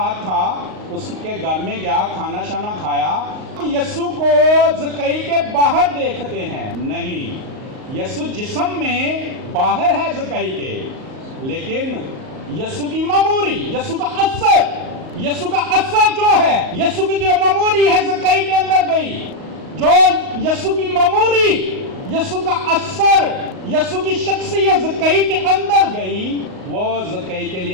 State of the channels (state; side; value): late; left; 38 ms